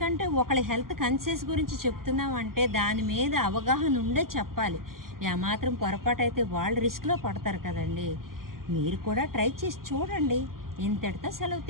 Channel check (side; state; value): left; late; 0.92 ms